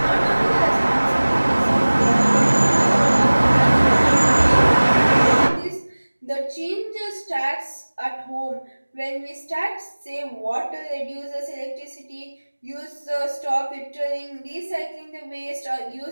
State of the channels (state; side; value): inverted; both; correlation -1.00